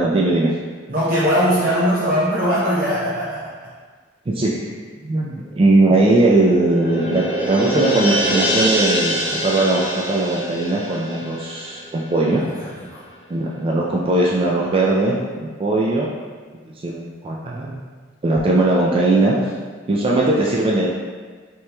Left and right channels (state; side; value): normal; both; correlation 0.49